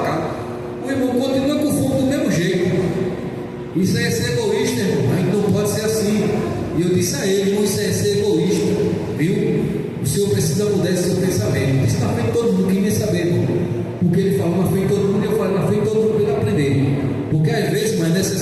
casa. O irmão continua com fome do mesmo jeito. Isso aí é ser egoísta, irmão. A gente não pode ser assim. E eu disse a ele: irmão, isso aí é ser egoísta, viu? Senhor precisa mudar esse seu pensamento. Isso na frente de todo mundo, quem nem saber, irmão. Porque ele falou na frente de todo mundo, e eu falei na frente de todo mundo para ele aprender. Porque às vezes, mas é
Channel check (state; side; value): identical; both; correlation 1.00